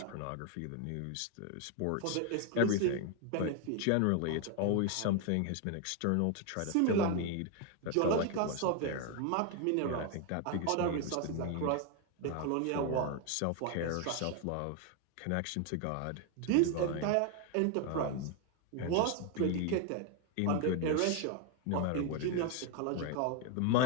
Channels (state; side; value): different; both; correlation 0.01